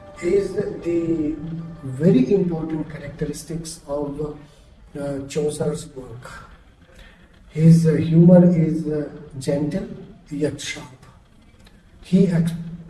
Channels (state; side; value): identical; both; correlation 1.00